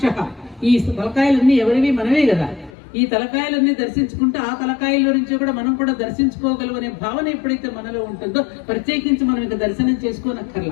ఈ తలకాయలన్నీ ఎవరివి? మనమే కదా. ఈ తలకాయలన్నీ దర్శించుకుంటే ఆ తలకాయల నుంచి కూడా మనం కూడా దర్శించుకోగలం అనే భావన ఎప్పుడైతే మనలో ఉంటుందో ప్రత్యేకించి మనం ఇంకా దర్శనం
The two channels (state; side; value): drops out; right; at 2.8 s